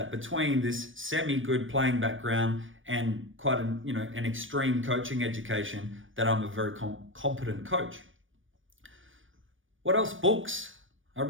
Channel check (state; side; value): late; left; 0.57 ms